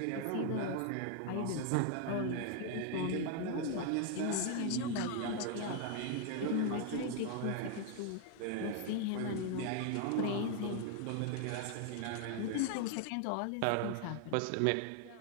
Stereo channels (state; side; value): different; both; correlation 0.00